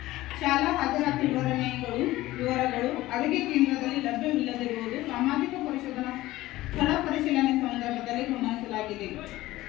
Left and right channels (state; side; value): quieter; right; 17.1 dB